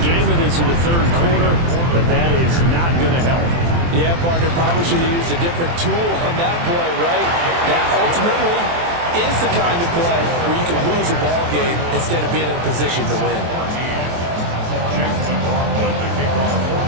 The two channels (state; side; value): late; left; 23 ms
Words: game of this in the third quarter, but that is not going to help. Yeah, partner, probably should have used a different tool on that play, right? That ultimately is the kind of play where you can lose a ball game instead of being in a position to win.